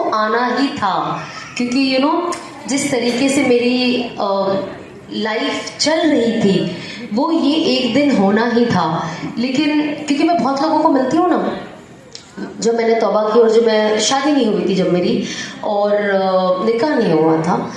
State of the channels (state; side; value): identical; both; correlation 1.00